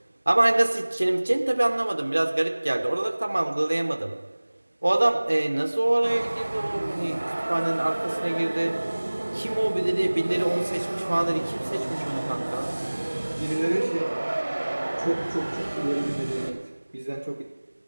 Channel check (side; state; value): both; inverted; correlation -1.00